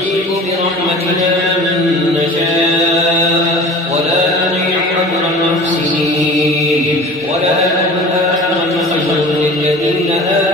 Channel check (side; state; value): both; normal; correlation 0.40